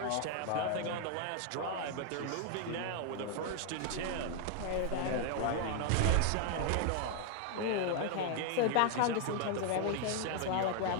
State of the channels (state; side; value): different; both; correlation 0.00